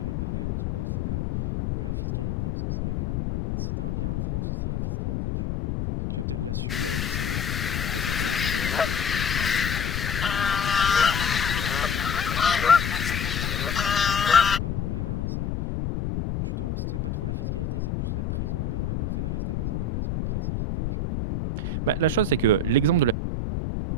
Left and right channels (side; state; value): left; noise; rumble, 2 dB below the sound